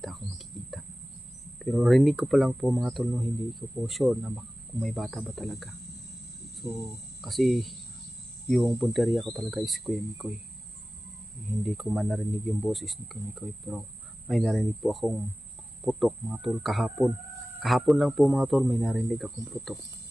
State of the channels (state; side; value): normal; both; correlation 0.96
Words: ako makikita. Pero rinig ko pa lang po mga tol, no? Hindi ko po sure na kung may bata ba talaga. So kasi yung punteriya ko talaga is Kuya Mikoy, hindi ko man narinig yung boses ni Kuya Mikoy, pero may narinig po akong putok mga tol kahapon lang po mga tol, may narinig akong putok,